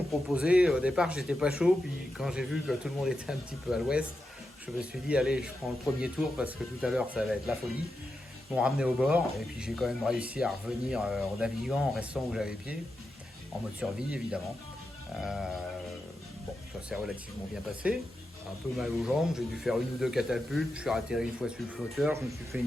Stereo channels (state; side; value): normal; both; correlation 0.88